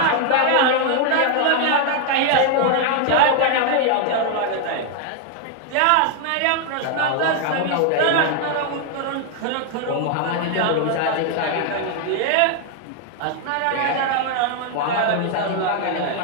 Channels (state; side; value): different; both; correlation 0.00